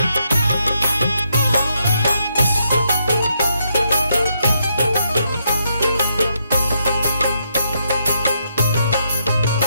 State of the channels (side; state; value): both; inverted; correlation -0.78